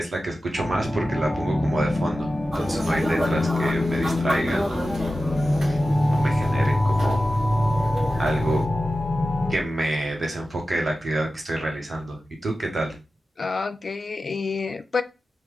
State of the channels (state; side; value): normal; both; correlation 0.93